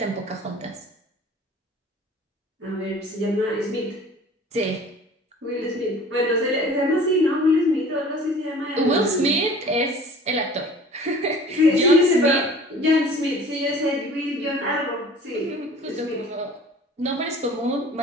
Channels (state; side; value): normal; both; correlation 0.46